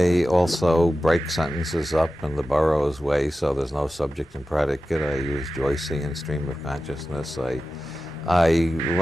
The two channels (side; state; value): both; normal; correlation 0.94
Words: also break sentences up in the Burroughs way, so there's no subject and predicate. I use Joycean stream of consciousness. I